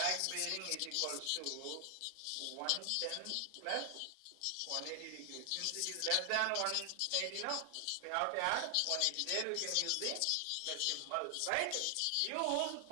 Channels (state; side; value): different; both; correlation 0.00